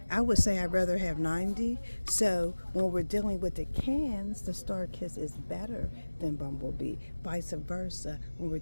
I would say I'd rather have 90. So when we're dealing with the cans, the Star Kiss is better than Bumblebee. Vice versa when we're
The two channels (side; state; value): both; inverted; correlation -1.00